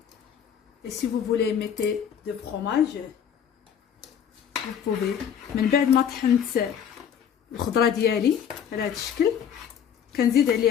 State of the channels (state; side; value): quieter; right; 8.4 dB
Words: Et si vous voulez mettre de fromage, vous pouvez. من بعد ما طحنت الخضره ديالي على هذا الشكل كنزيد